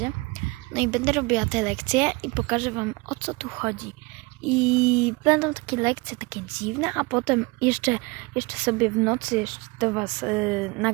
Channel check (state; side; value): quieter; left; 25.8 dB